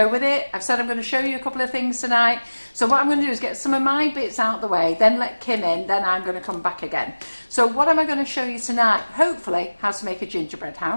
with it. I've said I'm going to show you a couple of things tonight. So what I'm going to do is get some of my bits out the way, then let Kim in, then I'm going to come back again. So what am I going to show you tonight? Hopefully how to make a gingerbread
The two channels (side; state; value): both; inverted; correlation -1.00